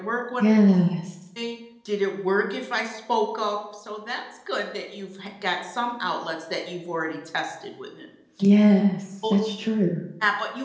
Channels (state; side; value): identical; both; correlation 1.00